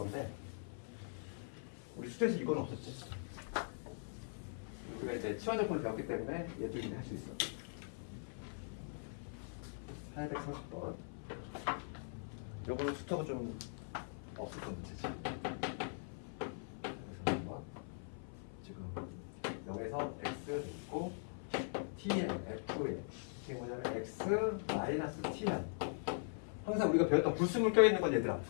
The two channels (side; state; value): right; silent; 50 dB below the other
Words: 우리 수트에서 이건 없었지. 우리가 이제 치환적분을 배웠기 때문에 얘도 이제 할 수 있어. 830번. 요거는 수트가 좀 없었던 문제지. 그래서 한번 지금 0에서 x 있고 tn, fn 이게 뭐냐면 x 마이너스 tn. 항상 우리가 배웠던 불순물 껴있는 건 얘들아